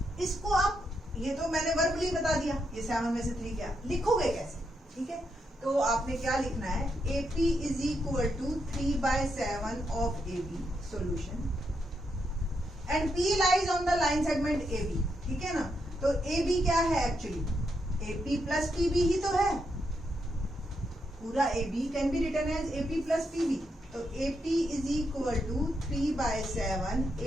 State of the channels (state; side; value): normal; both; correlation 0.81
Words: इसको आप, ये तो मैंने वर्बली बता दिया, ये 7 में से 3 क्या लिखोगे कैसे, ठीक है। तो आपने क्या लिखना है, AP is equal to 3/7 of AB solution and P lies on the line segment AB, ठीक है ना। तो AB क्या है एक्चुअली, AP प्लस PB ही तो है, पूरा AB can be written as AP plus PB। तो AP is equal to 3/7